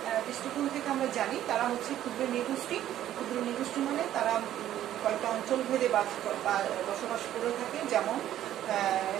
দৃষ্টিকোণ থেকে আমরা জানি তারা হচ্ছে ক্ষুদ্র নৃগোষ্ঠী। ক্ষুদ্র নৃগোষ্ঠী মানে তারা কয়েকটা অঞ্চল ভেদে বসবাস করে থাকে। যেমন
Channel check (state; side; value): quieter; left; 12.1 dB